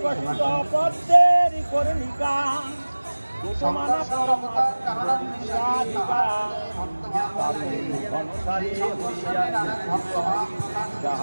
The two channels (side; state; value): both; inverted; correlation -1.00